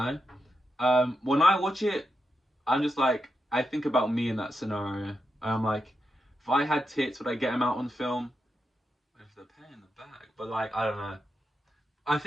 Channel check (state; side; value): normal; both; correlation 0.86